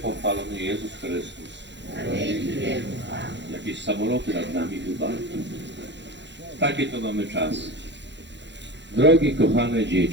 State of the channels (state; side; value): late; left; 0.52 ms